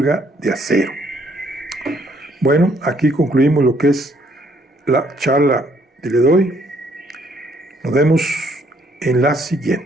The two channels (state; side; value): normal; both; correlation 0.67